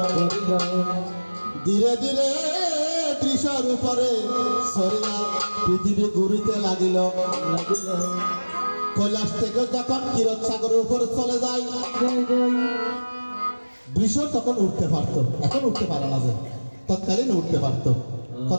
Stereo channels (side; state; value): both; inverted; correlation -1.00